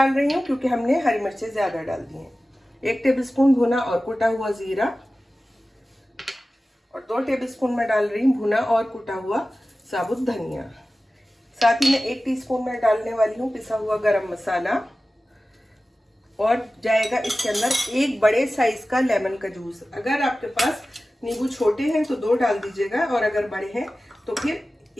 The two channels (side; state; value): both; normal; correlation 0.96